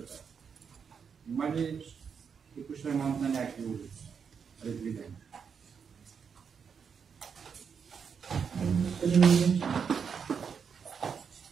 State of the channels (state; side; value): quieter; left; 6.6 dB